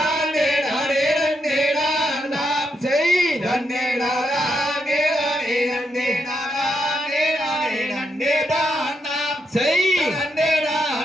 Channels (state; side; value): normal; both; correlation 0.81